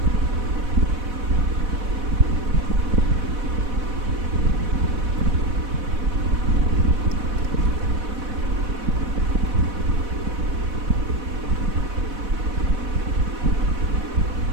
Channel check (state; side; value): late; left; 4.1 ms